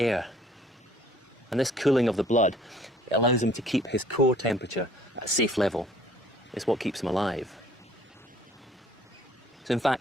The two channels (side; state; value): both; normal; correlation 0.57